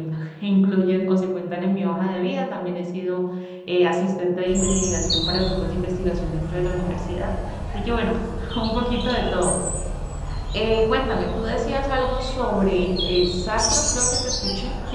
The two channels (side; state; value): both; identical; correlation 1.00